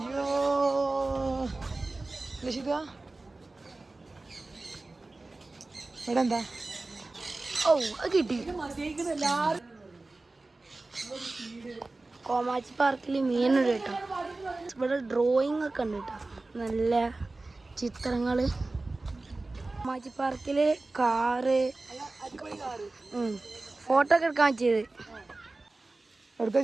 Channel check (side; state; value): left; quieter; 3.2 dB